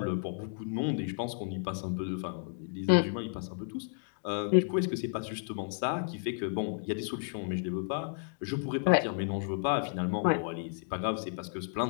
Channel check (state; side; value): silent; right; digital silence